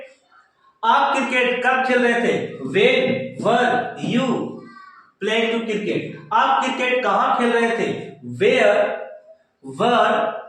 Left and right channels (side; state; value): both; identical; correlation 1.00